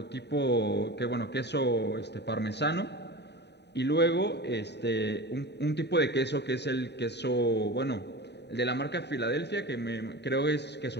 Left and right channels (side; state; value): right; late; 0.50 ms